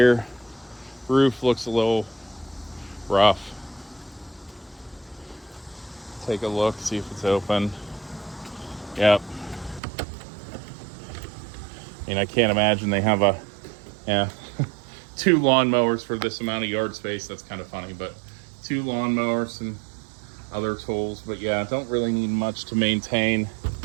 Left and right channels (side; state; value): left; drops out; at 9.8 s